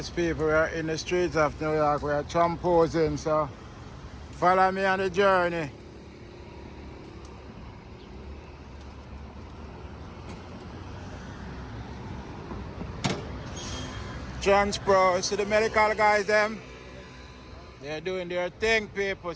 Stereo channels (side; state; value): both; identical; correlation 1.00